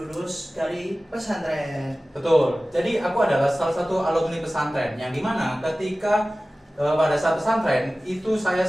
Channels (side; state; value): both; normal; correlation 0.97